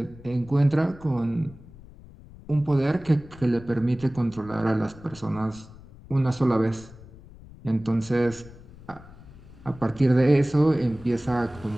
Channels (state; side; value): noise; left; rumble, 20 dB below the sound